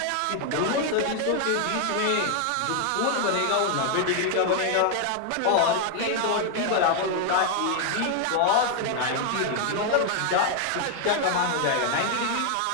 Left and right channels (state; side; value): different; both; correlation 0.00